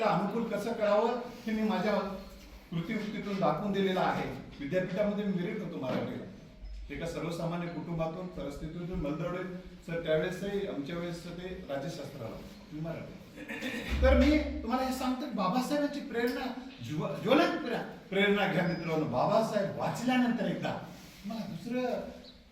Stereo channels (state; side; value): identical; both; correlation 1.00